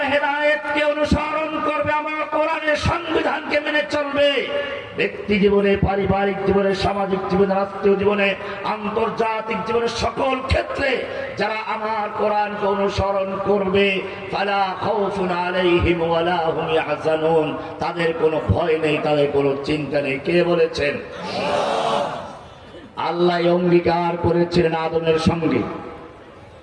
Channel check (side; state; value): both; identical; correlation 1.00